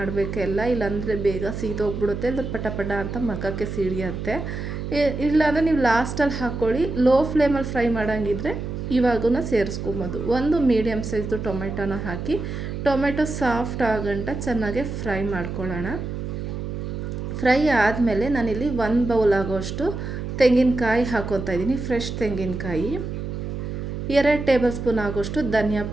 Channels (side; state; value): right; noise; hum, 5 dB below the sound